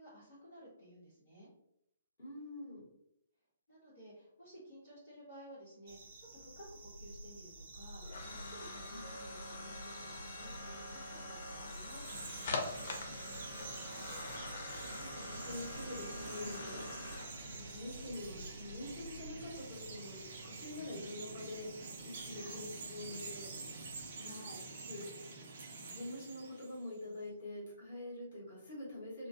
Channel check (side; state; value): both; inverted; correlation -0.65